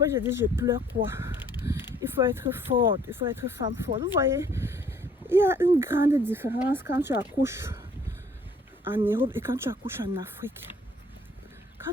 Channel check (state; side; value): normal; both; correlation 0.59